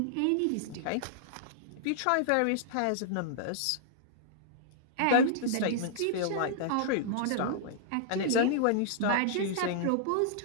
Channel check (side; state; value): both; different; correlation -0.01